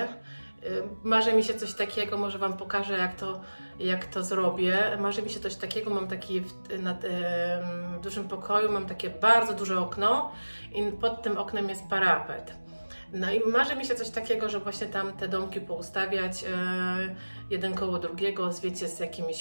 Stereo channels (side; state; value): both; inverted; correlation -1.00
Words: Marzy mi się coś takiego, może Wam pokażę, jak to zrobię. Marzy mi się coś takiego, mam taki w dużym pokoju, mam takie bardzo duże okno i pod tym oknem jest parapet. No i marzy mi się coś takiego, że właśnie tam te domki poustawiać jeden koło drugiego, wiecie, z